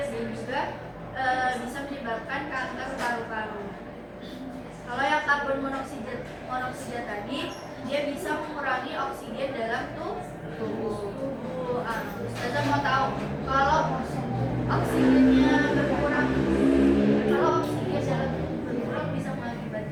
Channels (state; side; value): identical; both; correlation 1.00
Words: dan juga bisa menyebabkan kanker paru-paru. Kalau yang karbon monoksida tadi, dia bisa mengurangi oksigen dalam tubuh. Ustazah mau tahu kalau oksigennya berkurang, kalau oksigen dalam tubuh berkurang bisa